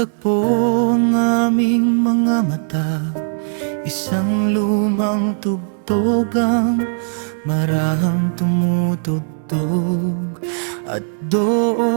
ang aming mga mata, isang lumang tugtog ang marahang tumutugtog. At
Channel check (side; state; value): left; silent; digital silence